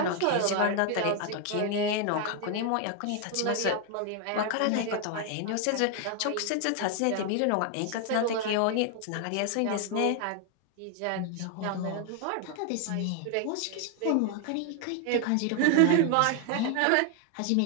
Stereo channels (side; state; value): both; different; correlation 0.00